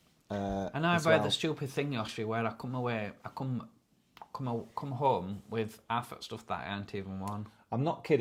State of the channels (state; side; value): identical; both; correlation 1.00